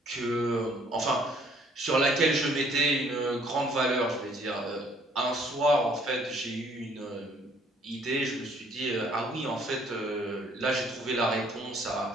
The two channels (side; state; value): both; normal; correlation 0.61